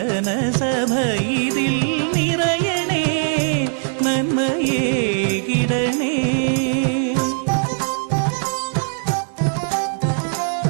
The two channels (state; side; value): silent; left; digital silence